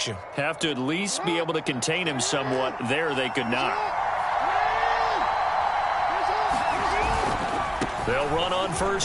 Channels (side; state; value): both; identical; correlation 1.00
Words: you. Have to at least be able to contain him somewhat. There they could not. They'll run on